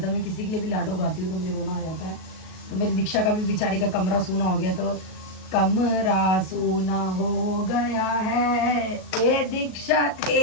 है। मैं किसी के लिए भी लाडो गाती हूँ तो मुझे रोना आ जाता है। तो मेरी दीक्षा का भी बेचारी का कमरा सूना हो गया, तो कमरा सूना हो गया है ए दीक्षा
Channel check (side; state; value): right; late; 37 ms